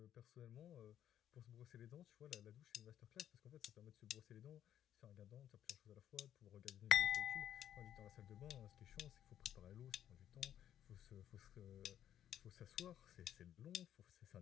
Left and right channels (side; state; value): right; quieter; 10.6 dB